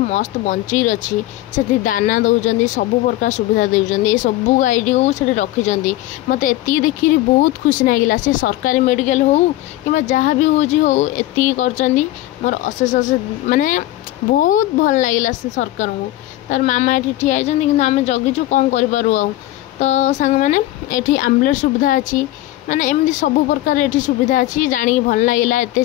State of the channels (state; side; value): quieter; right; 15.8 dB